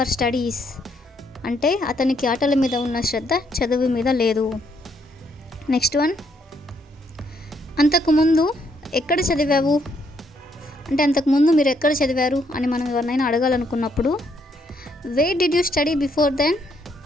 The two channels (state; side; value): normal; both; correlation 0.72